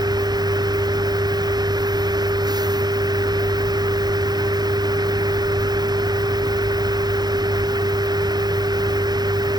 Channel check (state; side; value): late; left; 0.20 ms